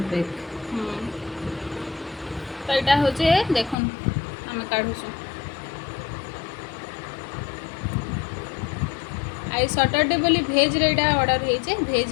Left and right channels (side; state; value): right; drops out; at 3.8 s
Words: पैक। तो यहाँ हूँ देखुन आम काढ़ुसु। आई सैटरडे बोली भेज रे ऑर्डर होइचे